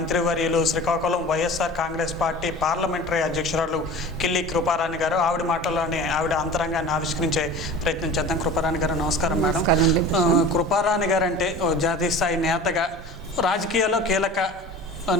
శ్రీకాకుళం వైఎస్ఆర్ కాంగ్రెస్ పార్టీ పార్లమెంటరీ అధ్యక్షురాలు కిల్లి కృపారాణి గారు. ఆవిడ మాటల్లోనే ఆవిడ అంతరంగాన్ని ఆవిష్కరించే ప్రయత్నం చేద్దాం. కృపారాణి గారు నమస్కారం మేడం. కృపారాణి గారు అంటే జాతీయ స్థాయి నేతగా, రాజకీయాల్లో కీలక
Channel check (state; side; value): normal; both; correlation 0.39